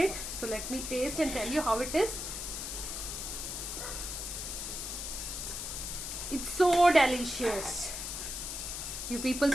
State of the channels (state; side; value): noise; left; hiss, 5 dB below the sound